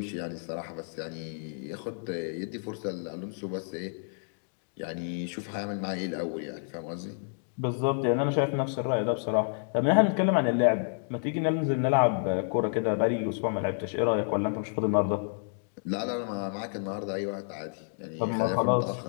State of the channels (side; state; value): right; silent; digital silence